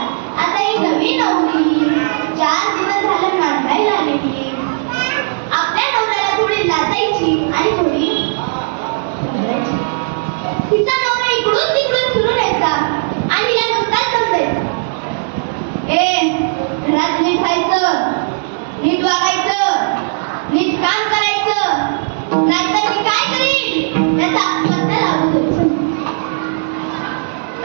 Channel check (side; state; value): left; silent; digital silence